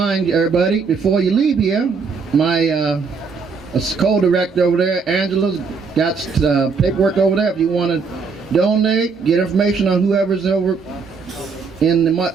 everybody, before you leave here, my co-director over there, Angela's got paperwork over there. If you want to donate, get information on whoever's over in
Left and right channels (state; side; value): quieter; left; 5.0 dB